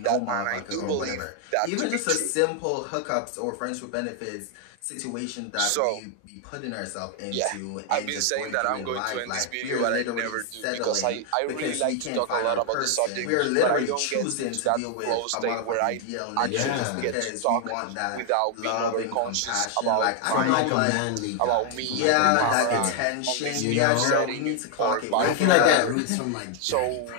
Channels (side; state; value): both; different; correlation 0.00